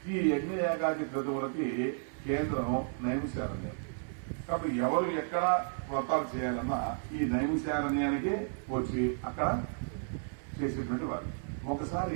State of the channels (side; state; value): left; silent; 56 dB below the other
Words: ఈ యజ్ఞయాగాది క్రతువులకి కేంద్రం నైమిషారణ్యం. కాబట్టి ఎవరు ఎక్కడ వ్రతాలు చేయాలన్నా ఈ నైమిషారణ్యానికి వచ్చి అక్కడ చేసేటువంటి వారు.